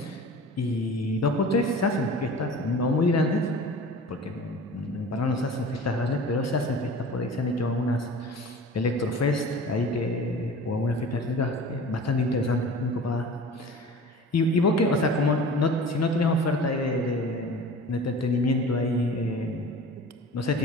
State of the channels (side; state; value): both; normal; correlation 0.40